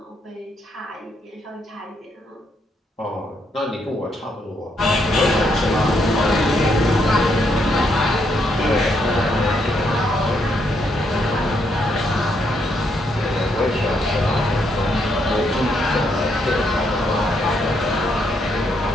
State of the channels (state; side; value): normal; both; correlation 0.76